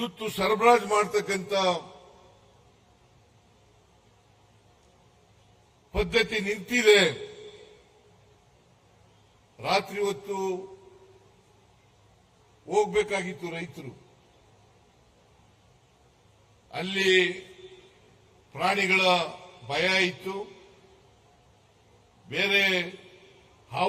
ಸರಬರಾಜು ಮಾಡತಕ್ಕಂಥ ಪದ್ಧತಿ ನಿಂತಿದೆ. ರಾತ್ರಿ ಹೊತ್ತು ಹೋಗಬೇಕಾಗಿತ್ತು ರೈತರು. ಅಲ್ಲಿ ಪ್ರಾಣಿಗಳ ಭಯ ಇತ್ತು, ಬೇರೆ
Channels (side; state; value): both; identical; correlation 1.00